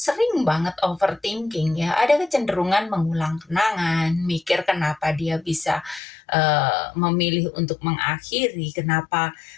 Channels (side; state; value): right; drops out; at 6.0 s